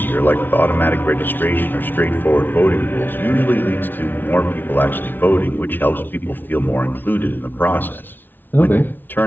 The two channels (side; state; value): right; late; 0.092 ms